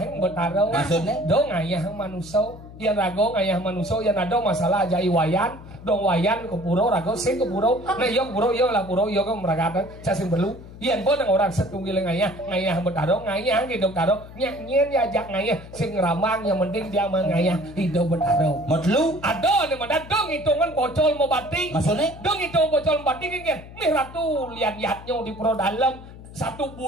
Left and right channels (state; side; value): noise; left; hum, 16 dB below the sound